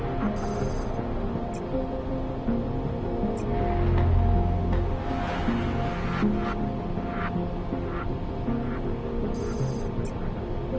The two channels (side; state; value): both; identical; correlation 1.00